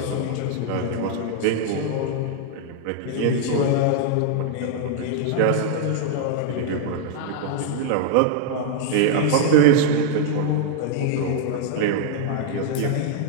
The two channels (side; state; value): both; different; correlation 0.00